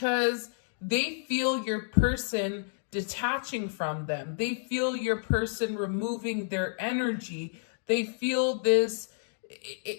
they feel your person detaching from them. They feel your person removing their energy. They feel this,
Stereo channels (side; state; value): right; silent; digital silence